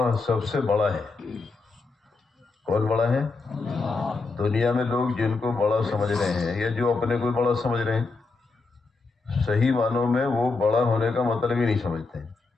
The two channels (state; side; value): quieter; right; 4.0 dB